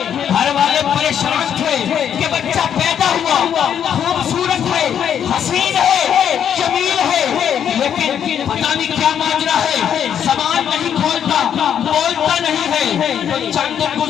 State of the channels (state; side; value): quieter; right; 8.9 dB